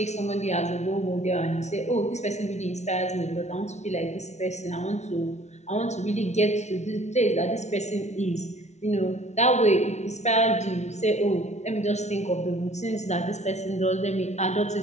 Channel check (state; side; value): late; right; 0.32 ms